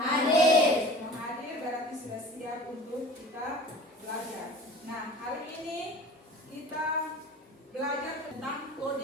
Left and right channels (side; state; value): both; normal; correlation 0.42